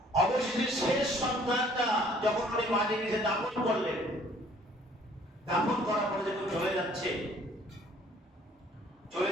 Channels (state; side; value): normal; both; correlation 0.58